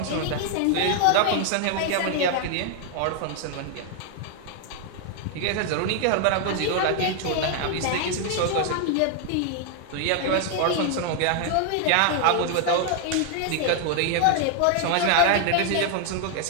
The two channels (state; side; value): different; both; correlation 0.00